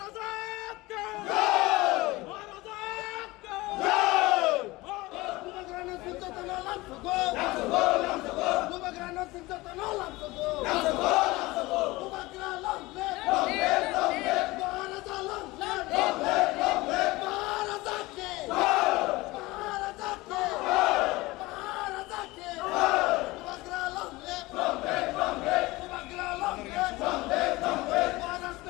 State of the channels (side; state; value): right; quieter; 20.8 dB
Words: ke jai! Maharaja ke jai! Kubagrana Sintatana Lam sabha! Lam sabha! Lam sabha! Kubagrana Sintatana Lam sabha! Lam sabha! Lam sabha! Kubagrana Lam live! Long live! Long live! Maharaja long live! Long live! Long live! Maharaja ke jai! Maharaja ke jai! Maharaja ke jai! Kubagrana long live! Long live! Long live! Kubagrana long live! Long live! Long live!